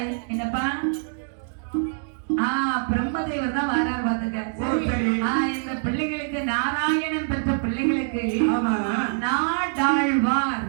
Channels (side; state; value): left; silent; digital silence